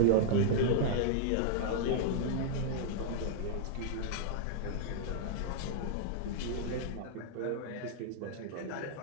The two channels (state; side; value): different; both; correlation -0.01